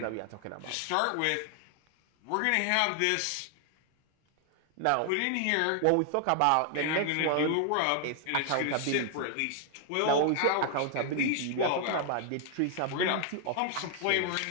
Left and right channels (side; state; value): both; different; correlation 0.00